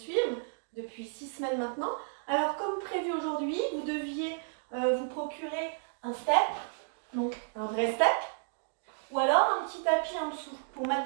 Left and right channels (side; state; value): left; silent; digital silence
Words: depuis 6 semaines maintenant. Alors comme prévu aujourd'hui, vous deviez vous procurer un step, donc un vrai step, ou alors un petit tapis en dessous pour